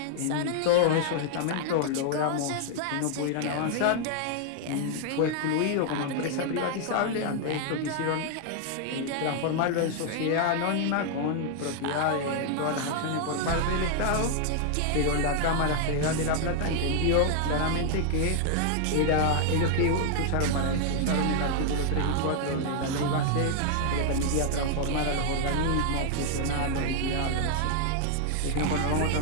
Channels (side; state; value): both; different; correlation 0.00